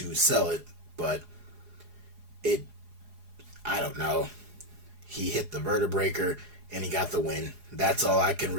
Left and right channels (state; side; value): late; left; 4.8 ms